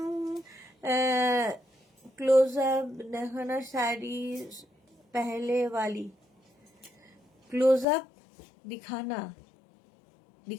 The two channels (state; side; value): drops out; right; at 7.9 s